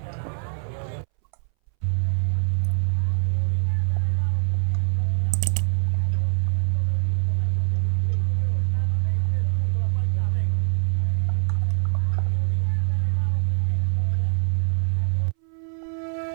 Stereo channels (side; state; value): left; silent; 63 dB below the other